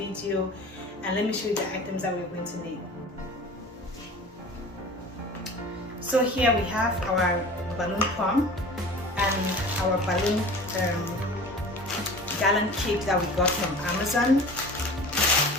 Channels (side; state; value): both; normal; correlation 0.40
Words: and let me show you the items that we're going to need. So here we have our balloon pump and our balloon gallon kit that we got from Amazon.